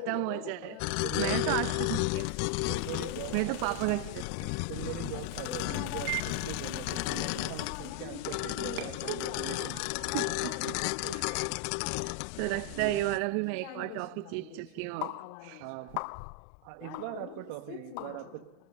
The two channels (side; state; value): both; different; correlation 0.00